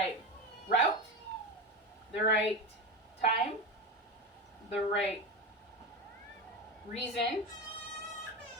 route, the right time, the right reason,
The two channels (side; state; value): both; normal; correlation 0.20